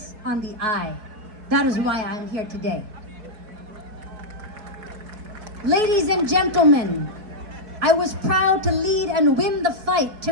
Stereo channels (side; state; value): left; late; 4.6 ms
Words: on the eye. That is why I'm here today. Ladies and gentlemen, I was proud to lead and win the fight